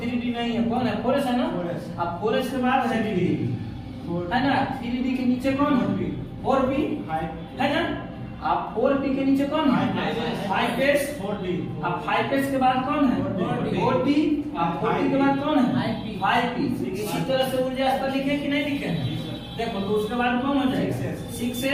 नहीं है, कौन है 4s है ना, अब 4s के बाद है 3d है ना, 3d के नीचे कौन है 4p है ना, अब 4p के नीचे कौन है 5s, अब 5s के बाद कौन है 4d, अब 4d के बाद कौन है 5p। इसी तरह से ऊर्जा स्तर लिखे कि नहीं लिखे, देखो तो उसके बाद कौन हो जाएगा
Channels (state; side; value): identical; both; correlation 1.00